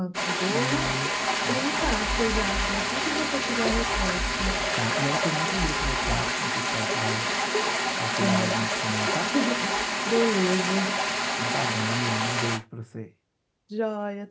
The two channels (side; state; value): both; identical; correlation 1.00